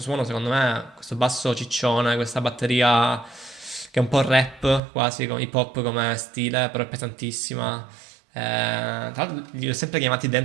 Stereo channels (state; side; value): drops out; left; at 4.8 s